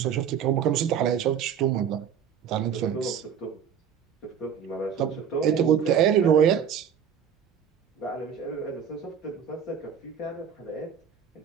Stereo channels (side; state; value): left; quieter; 8.0 dB